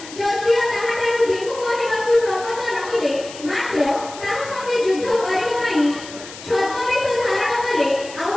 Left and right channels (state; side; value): noise; left; hiss, 15 dB below the sound